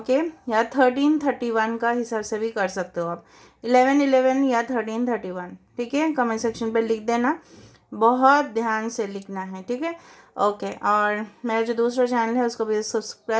या 1331 का हिसाब से भी कर सकते हो आप, 1111 या 1331, ठीक है। कमेंट सेक्शन पे लिख देना, बहुत ध्यान से लिखना है, ठीक है, ओके। और मेरा जो दूसरा चैनल है उसको भी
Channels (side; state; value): both; identical; correlation 1.00